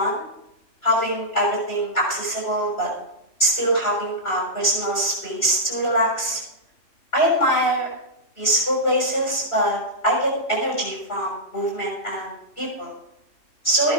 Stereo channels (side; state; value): right; late; 3.0 ms